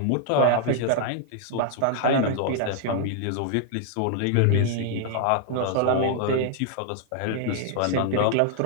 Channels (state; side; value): different; both; correlation -0.01